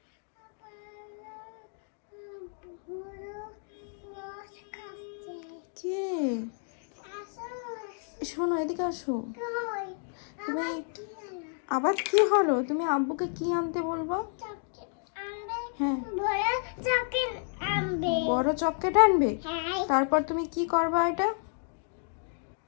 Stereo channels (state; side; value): silent; right; 56 dB below the other